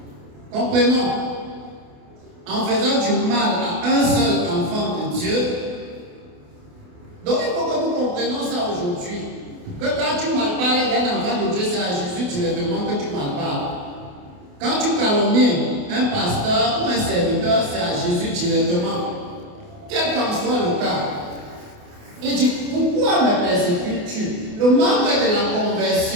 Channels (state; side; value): late; left; 28 ms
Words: Comprenons. En faisant du mal à un seul enfant de Dieu, donc il faut que nous comprenions ça aujourd'hui. Que quand tu malparles d'un enfant de Dieu, c'est à Jésus directement que tu malparles. Quand tu calomnies un pasteur ou un serviteur, c'est à Jésus directement. Quel qu'en soit le cas. Il dit, pourquoi me persécutes-tu? Le manque de la